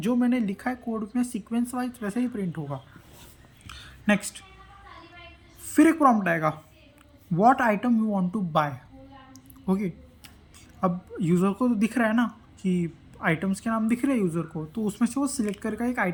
मैंने लिखा है कोड में सीक्वेंस वाइज, वैसे ही प्रिंट होगा। नेक्स्ट, फिर एक प्रॉम्प्ट आएगा, what item you want to buy. Okay, अब यूज़र को तो दिख रहा है ना कि आइटम्स के नाम दिख रहे हैं यूज़र को, तो उसमें से वो सिलेक्ट करेगा एक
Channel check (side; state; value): both; identical; correlation 1.00